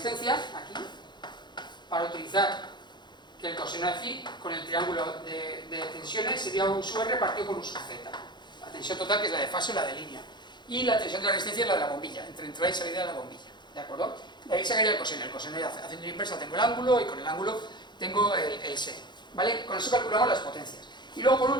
aquí, para utilizar que el coseno de phi con el triángulo de tensiones sería U sub R partido por U sub Z. La tensión total, que es la de fase o la de línea. Y la tensión de la resistencia es la de la bombilla, entre entrada y salida de la bombilla, ¿de acuerdo? De ahí sacaría el coseno. El coseno ya haciendo la inversa tengo el ángulo, y con el ángulo tengo el seno, ¿vale? Con eso calculamos las potencias. Y luego, por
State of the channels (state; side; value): late; right; 0.21 ms